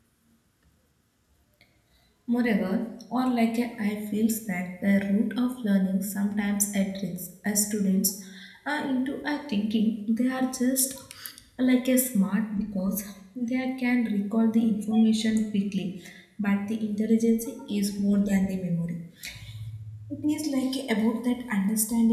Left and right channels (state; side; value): identical; both; correlation 1.00